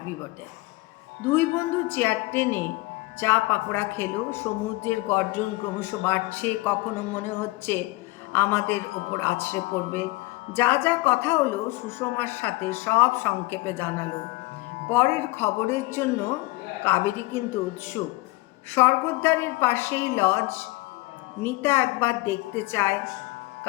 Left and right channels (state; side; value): quieter; right; 21.6 dB